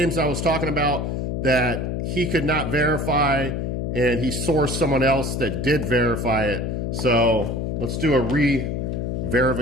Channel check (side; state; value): left; noise; hum, 2 dB below the sound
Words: I was talking about that he could not verify, and he sourced someone else that did verify it. So let's do a